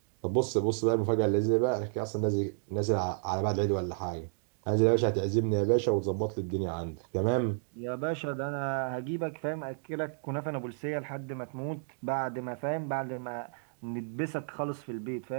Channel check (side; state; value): left; silent; digital silence